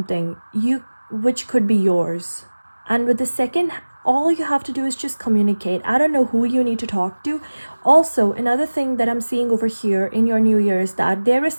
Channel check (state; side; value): inverted; both; correlation -1.00